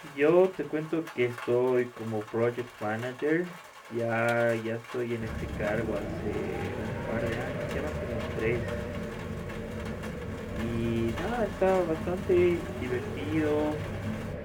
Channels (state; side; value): identical; both; correlation 1.00